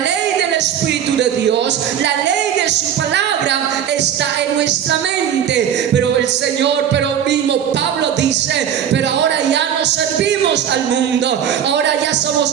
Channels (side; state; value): left; quieter; 9.2 dB